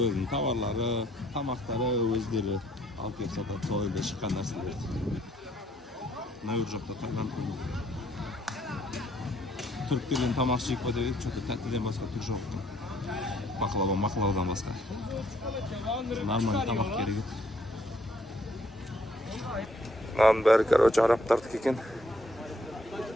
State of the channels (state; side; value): normal; both; correlation 0.66